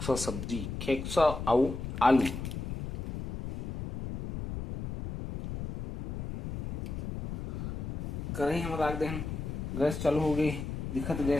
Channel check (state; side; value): noise; left; rumble, 5 dB below the sound